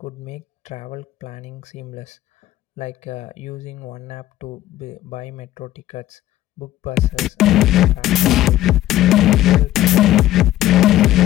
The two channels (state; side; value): quieter; right; 14.3 dB